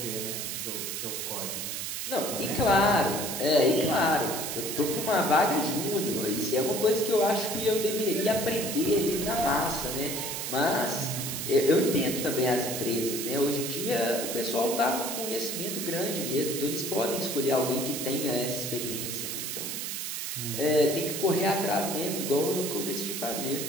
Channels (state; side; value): noise; right; hiss, 4 dB below the sound